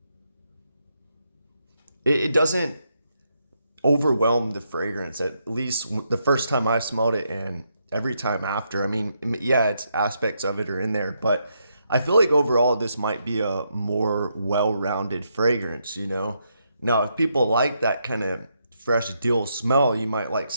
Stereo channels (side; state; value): both; inverted; correlation -0.79